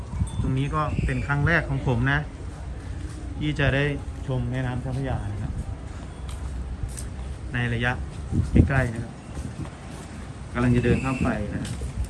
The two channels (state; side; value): identical; both; correlation 1.00